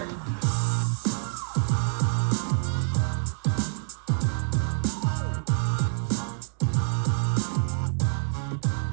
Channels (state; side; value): silent; left; digital silence